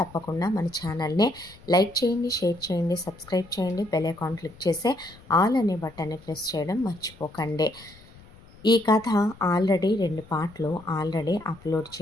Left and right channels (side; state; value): left; noise; rumble, 23 dB below the sound